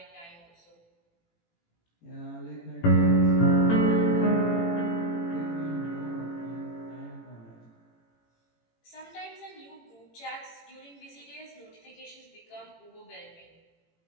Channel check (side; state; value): right; late; 18 ms